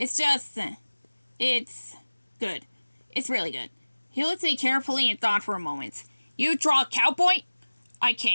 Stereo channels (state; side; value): inverted; both; correlation -1.00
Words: just, it's good. It's really good. He looked at me carefully and thought for a moment. You draw a cowboy? I